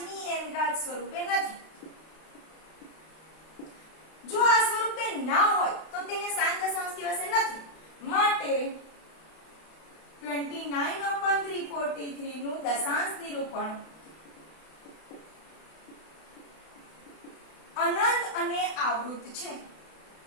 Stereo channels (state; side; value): late; right; 32 ms